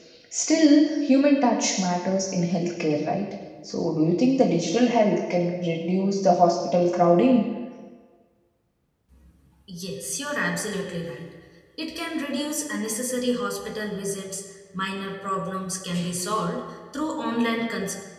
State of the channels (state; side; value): identical; both; correlation 1.00